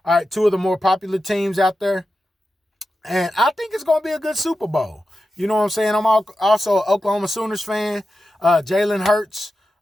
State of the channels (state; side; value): normal; both; correlation 0.91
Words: All right. 2 of the more popular teams out there. And I think it's going to be a good Super Bowl. You know what I'm saying? I'm also an Oklahoma Sooners fan. Jalen Hurts